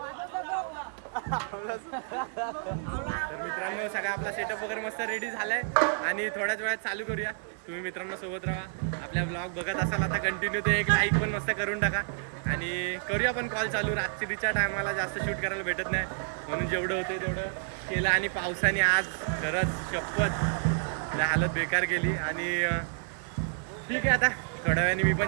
तर मित्रांनो सगळा आपला सेटअप वगैरे मस्त रेडी झालाय आणि थोड्याच वेळात चालू करूया. तुम्ही मित्रांनो सोबत राहा. आपल्या ब्लॉग बघत असाल आता कंटिन्यू ते एक लाईक पण मस्त करून टाका आणि करूया पण कॉल चालू. रात्रीच्या टायमाला जास्त शूट करायला भेटत नाही म्हणून जेवढं होते तेवढं केलं आणि पावसाने आज खरंच शपथ हालत बेकार केली आणि ठीक आहे आता थोड्या वेळाने मी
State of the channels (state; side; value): silent; left; digital silence